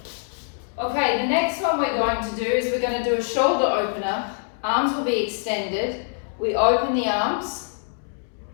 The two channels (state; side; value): silent; right; digital silence